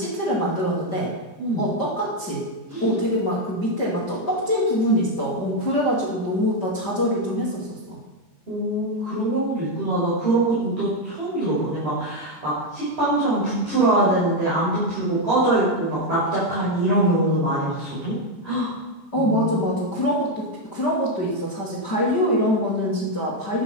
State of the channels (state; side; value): late; right; 5.1 ms